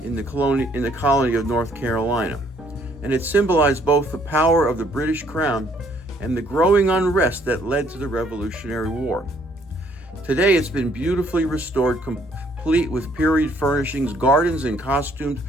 in the colony of North Carolina, and it symbolized both the power of the British crown and the growing unrest that led to the Revolutionary War. Today it's been beautifully restored, complete with period furnishings, gardens, and costumed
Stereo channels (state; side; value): normal; both; correlation 0.65